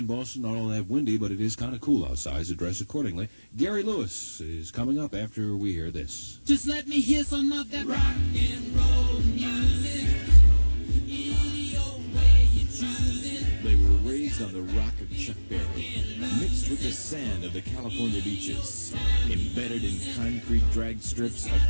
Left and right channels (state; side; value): inverted; both; correlation -1.00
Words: Boston. Not all that windy, but it is kind of cool outside, so dress accordingly. Gary Lewis is coming up after we hear this. Just let me hear some of that rock and roll music. Any old way you choose it. They were raised on the rock of Chuck Berry, mixed with the sand of the California beaches, embedded in concrete drag strips